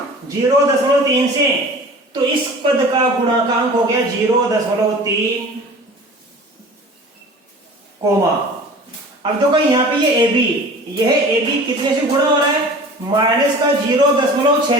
0.3 से। तो इस पद का गुणांक हो गया 0.3, कोमा। अब देखो यहाँ पे ये ab, यह ab कितने से गुणा हो रहा है? माइनस का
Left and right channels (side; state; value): both; normal; correlation 0.42